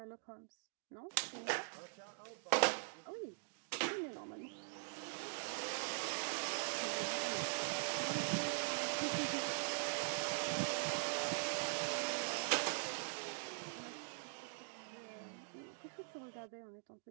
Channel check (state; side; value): silent; left; digital silence